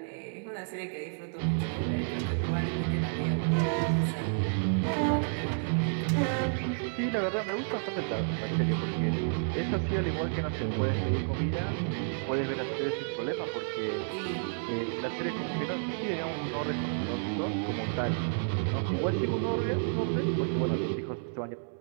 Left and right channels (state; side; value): silent; left; 57 dB below the other